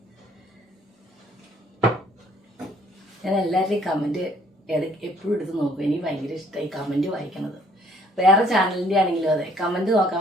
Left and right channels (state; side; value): normal; both; correlation 0.61